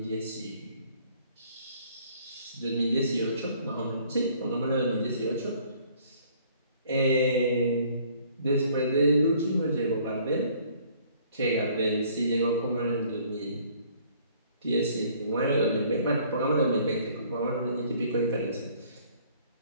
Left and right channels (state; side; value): inverted; both; correlation -0.58